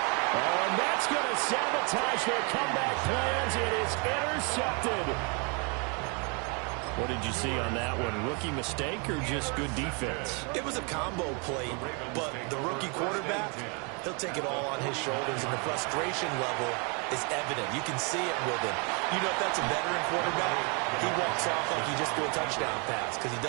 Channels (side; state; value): left; quieter; 34.0 dB